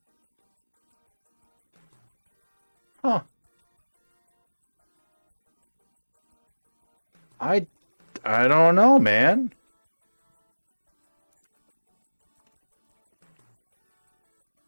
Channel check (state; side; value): inverted; both; correlation -1.00